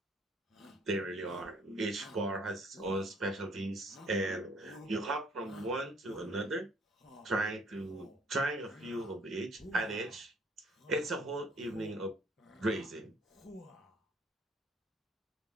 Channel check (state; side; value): normal; both; correlation 0.60